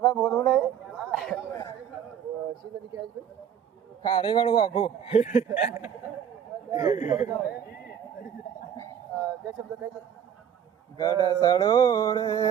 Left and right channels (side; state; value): left; quieter; 8.7 dB